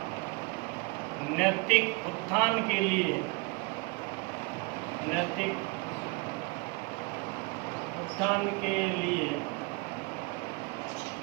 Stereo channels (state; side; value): quieter; left; 28.2 dB